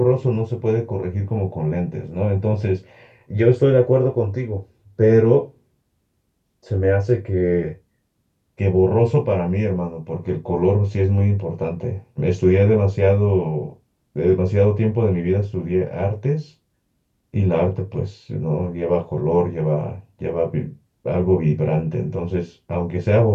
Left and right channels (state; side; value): identical; both; correlation 1.00